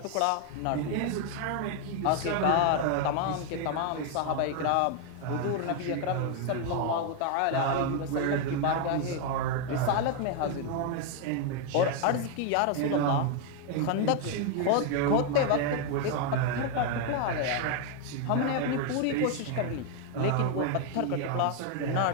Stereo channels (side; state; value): both; different; correlation 0.01